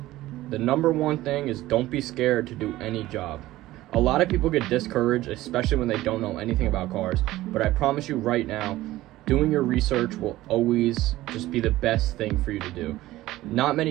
the number one thing is don't be scared to do any job. A lot of people get discouraged, especially when they don't know anything about cars, but I promise you right now, doing your research will always just be the best thing for you to do. Not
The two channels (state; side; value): quieter; left; 16.4 dB